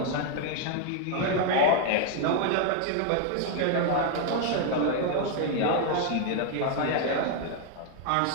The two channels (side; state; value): both; different; correlation 0.00